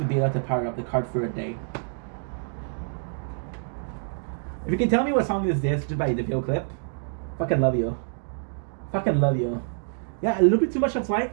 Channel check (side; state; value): left; silent; digital silence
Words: be enough to power up the cart for a day. If you can tell me what song is this just by the video clip, fucking love you. Fucking love you. Yeah, a little bit too much of